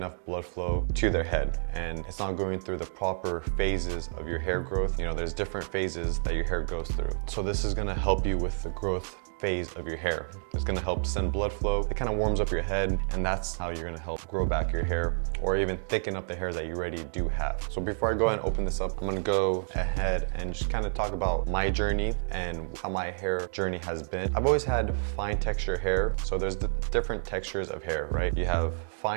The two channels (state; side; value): silent; left; digital silence